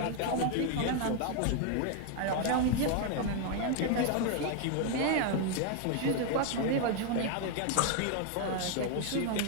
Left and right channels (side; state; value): both; different; correlation 0.01